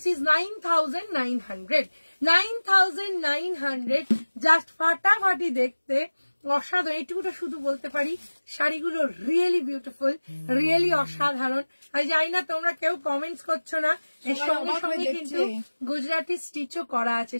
ইজ 9,900, 9,900, জাস্ট ফাটাফাটি দেখতে, অসাধারণ। এইটুকুটা শুধু বলতে পারি, শাড়িগুলো রিয়েলি বিউটিফুল, রিয়েলি অসাধারণ। আমি জানি না তোমরা কেউ কমেন্টস করছো না, এর সঙ্গে সঙ্গে কিন্তু গুজরাটি স্টিচও করা আছে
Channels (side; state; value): both; inverted; correlation -1.00